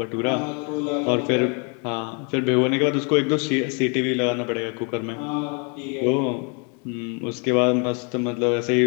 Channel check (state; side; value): quieter; right; 36.1 dB